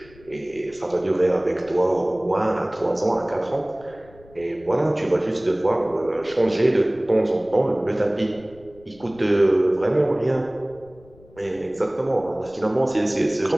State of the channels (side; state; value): left; noise; rumble, 25 dB below the sound